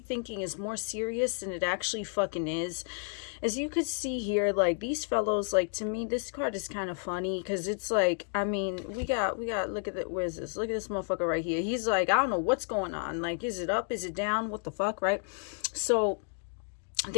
is more serious than it actually fucking is. As you could see here, like these fellows, like to me, this card is kind of funny because it's like, I mean, we got, look at it. Where's this? Look at this motherfucker right here. He's like, I don't know what's going on. Like, is it up? Is it down? What the fuck, right? So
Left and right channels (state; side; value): silent; right; 57 dB below the other